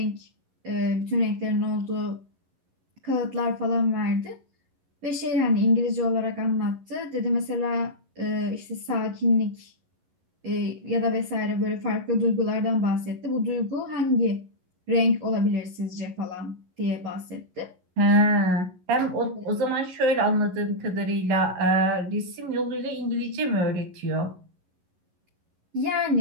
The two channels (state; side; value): late; left; 11 ms